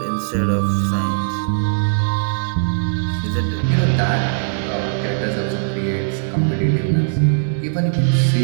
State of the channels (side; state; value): left; silent; digital silence